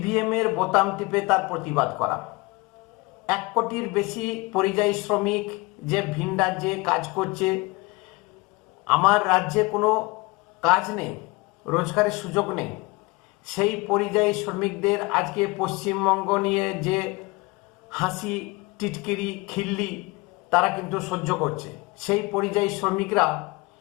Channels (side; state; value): right; quieter; 24.5 dB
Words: এর বোতাম টিপে তার প্রতিবাদ করা। 1 কোটির বেশি পরিযায়ী শ্রমিক যে ভিন রাজ্যে কাজ করছে, আমার রাজ্যে কোনো কাজ নেই, রোজগারের সুযোগ নেই, সেই পরিযায়ী শ্রমিকদের আজকে পশ্চিমবঙ্গ নিয়ে যে হাসি টিটকিরি খিল্লি তারা কিন্তু সহ্য করছে। সেই পরিযায়ী শ্রমিকরা